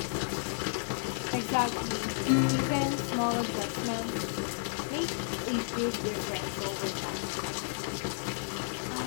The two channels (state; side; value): silent; right; 56 dB below the other